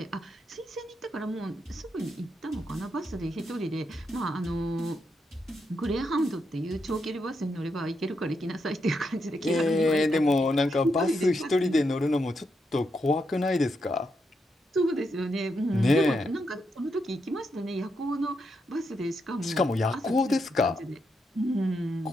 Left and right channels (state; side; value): normal; both; correlation 0.82